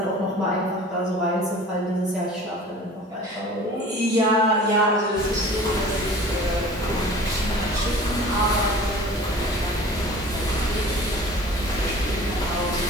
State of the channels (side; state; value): both; normal; correlation 0.43